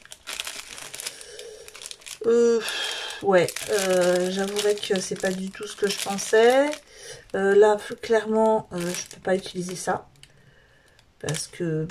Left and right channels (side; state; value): both; identical; correlation 1.00